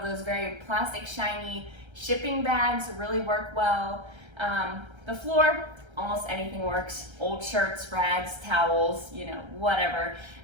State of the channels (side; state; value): left; late; 1.3 ms